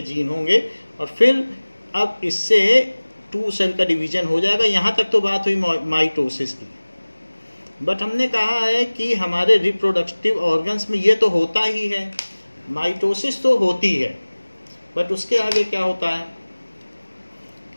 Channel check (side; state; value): both; inverted; correlation -1.00